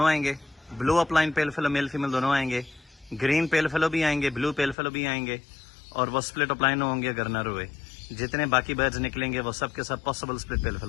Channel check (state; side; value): drops out; right; at 4.8 s